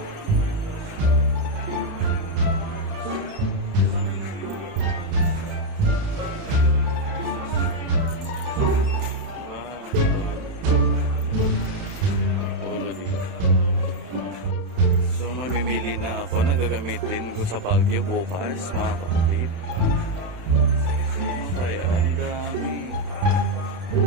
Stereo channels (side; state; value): left; late; 31 ms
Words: Wow. Polo dito. So mamimili na ako na gagamitin ko sa Baguio bukas mga kapatid. Ano kaya? Ang dami.